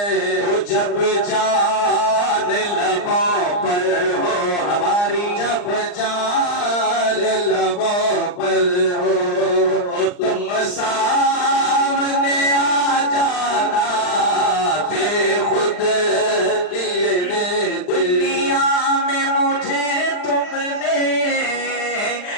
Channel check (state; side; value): late; right; 39 ms